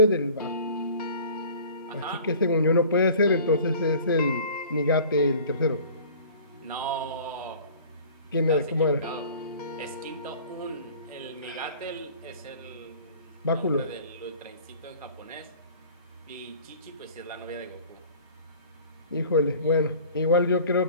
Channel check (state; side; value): inverted; both; correlation -0.46